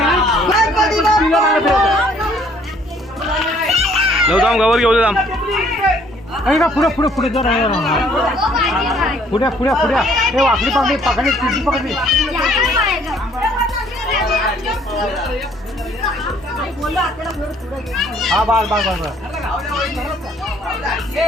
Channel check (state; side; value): normal; both; correlation 0.61